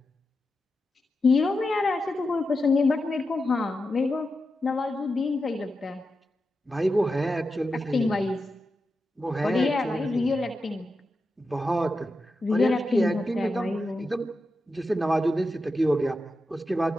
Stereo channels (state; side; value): normal; both; correlation 0.89